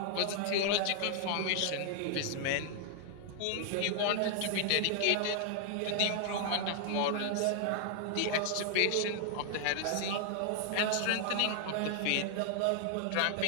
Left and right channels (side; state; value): both; different; correlation 0.00